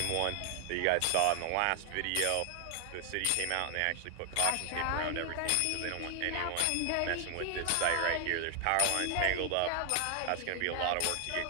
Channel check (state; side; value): different; both; correlation 0.00